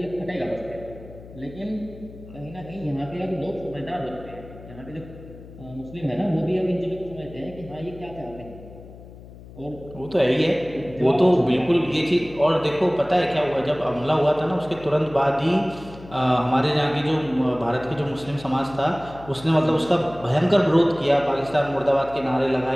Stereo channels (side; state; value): left; noise; hum, 18 dB below the sound